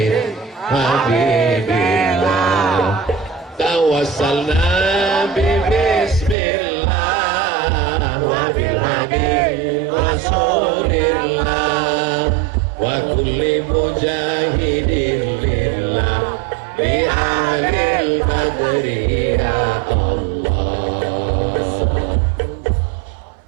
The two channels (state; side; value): drops out; left; at 6.4 s